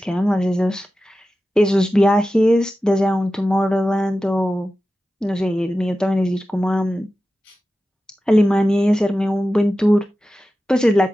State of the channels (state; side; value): normal; both; correlation 0.94